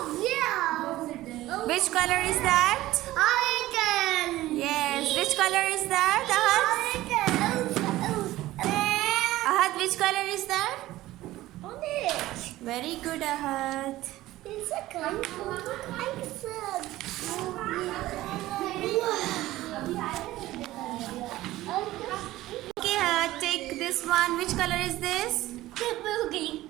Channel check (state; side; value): quieter; left; 16.4 dB